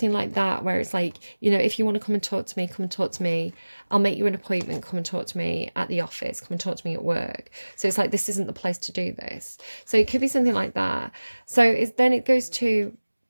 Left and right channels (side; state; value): both; inverted; correlation -1.00